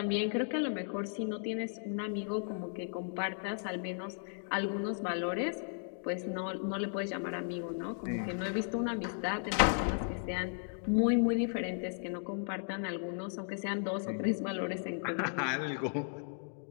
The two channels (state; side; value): silent; right; digital silence